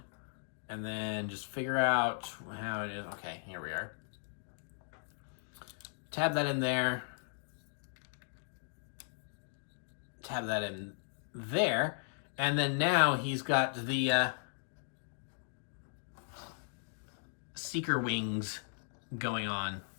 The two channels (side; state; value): right; silent; digital silence